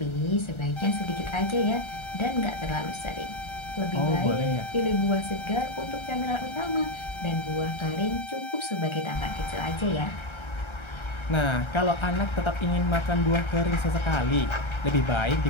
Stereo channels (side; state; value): right; late; 1.3 ms